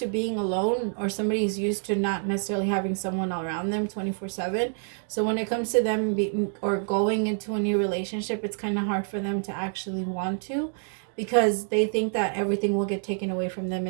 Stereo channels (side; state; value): left; silent; 60 dB below the other